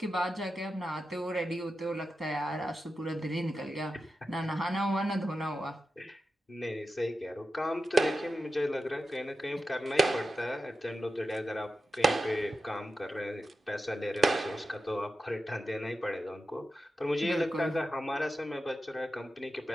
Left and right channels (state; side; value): normal; both; correlation 0.91